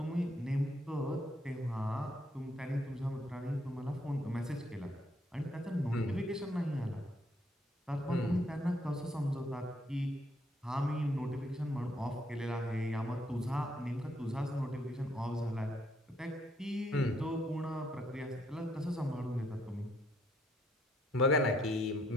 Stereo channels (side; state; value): both; normal; correlation 0.71